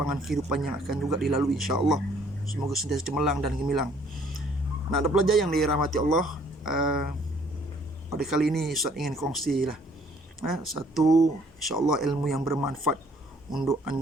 kehidupan yang akan juga dilalui insya-Allah. Semoga sentiasa cemerlang dan gemilang. Anak-anak pelajar yang dirahmati Allah, pada kali ini Ustaz ingin kongsi satu insya-Allah ilmu yang bermanfaat untuk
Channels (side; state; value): both; normal; correlation 0.61